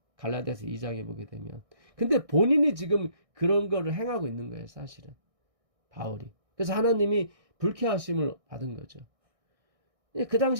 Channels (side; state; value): left; late; 1.6 ms